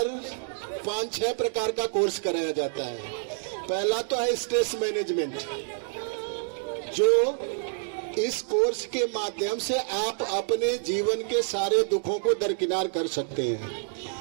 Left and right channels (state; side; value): silent; left; digital silence